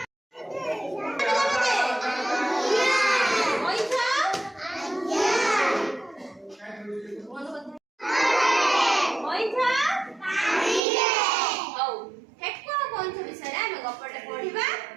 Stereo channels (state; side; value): drops out; left; at 10.8 s